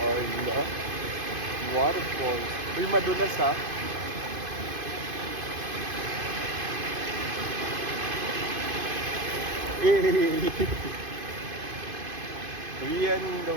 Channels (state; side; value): late; left; 2.5 ms